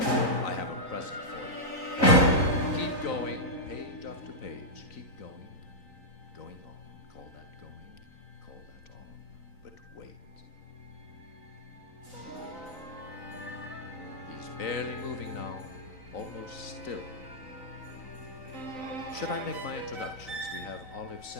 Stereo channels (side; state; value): right; late; 3.9 ms